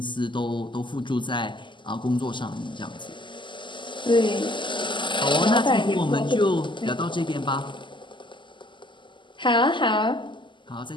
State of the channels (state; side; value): late; right; 0.24 ms